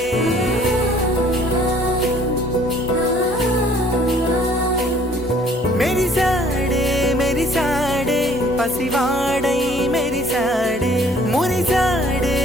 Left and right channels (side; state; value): both; normal; correlation 0.57